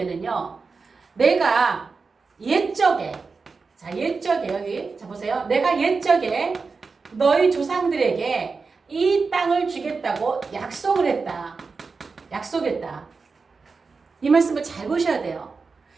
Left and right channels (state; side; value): quieter; left; 4.6 dB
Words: 내가 옛적에 여기 보세요. 내가 옛적에 너희 조상들에게 이 땅을 주겠다고 약속했다. 이 말씀을 잘 보셔야 돼요.